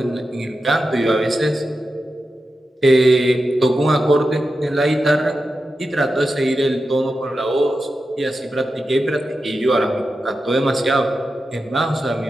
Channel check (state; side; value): normal; both; correlation 0.90